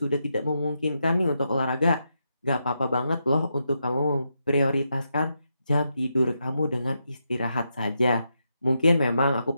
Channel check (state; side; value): inverted; both; correlation -0.84